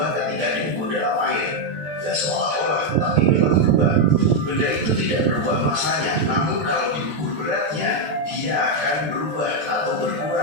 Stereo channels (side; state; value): left; late; 14 ms